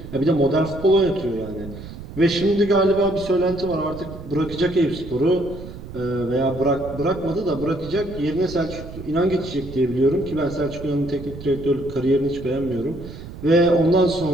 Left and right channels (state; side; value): noise; right; rumble, 13 dB below the sound